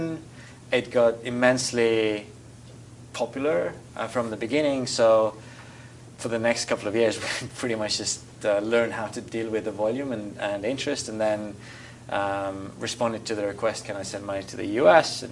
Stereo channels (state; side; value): identical; both; correlation 1.00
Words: It got immensely popular from the beginning. So for the next couple of years, we pretty much just learned how to deal with the volume and interest, and then responded to the request, can I send money to the US